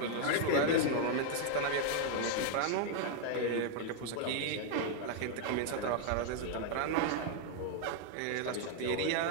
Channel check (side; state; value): both; different; correlation 0.00